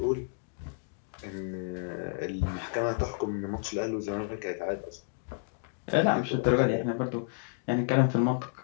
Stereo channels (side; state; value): right; silent; digital silence